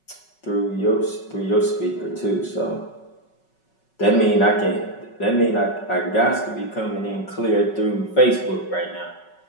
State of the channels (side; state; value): right; late; 5.3 ms